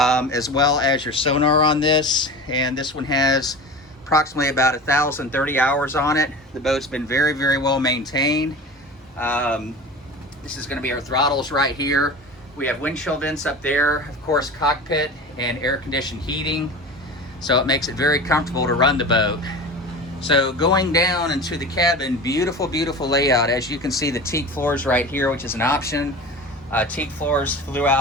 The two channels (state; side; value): normal; both; correlation 0.33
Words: well as your sonar on this. And this one has approximately about 1,030 hours on it. The boat's been very well maintained. This is going to be our throttles right here. We have windshield vents up there, of course, cockpit and air conditioned heating. So it makes it very comfortable to run the boat. So going down into the cabin, beautiful layout. As you can see, the teak floors right here, which is an option. Teak floors